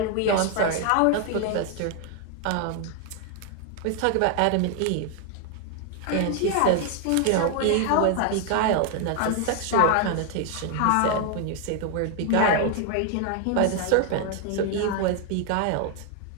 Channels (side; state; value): both; different; correlation 0.00